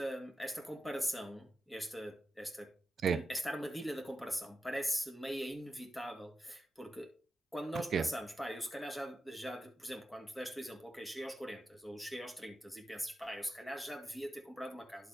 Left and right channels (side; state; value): both; normal; correlation 0.90